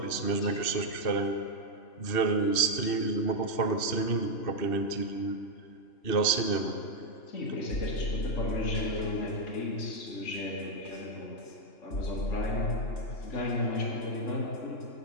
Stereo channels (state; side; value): late; right; 2.7 ms